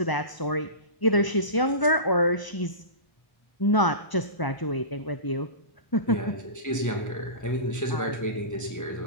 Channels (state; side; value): late; right; 1.0 ms